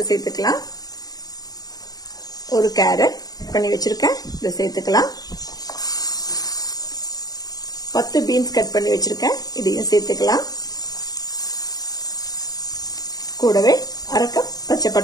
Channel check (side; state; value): right; late; 0.18 ms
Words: சேர்த்துக்கலாம். ஒரு கேரட் பண்ணி வச்சிருக்கேன். இதை சேர்த்துக்கலாம். 10 பீன்ஸ் கட் பண்ணி வச்சிருக்கேன். இதையும் சேர்த்துக்கலாம். கூடவே 1/2 கப் பச்சை